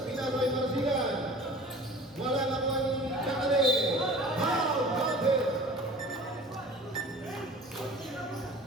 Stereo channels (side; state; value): both; normal; correlation 0.42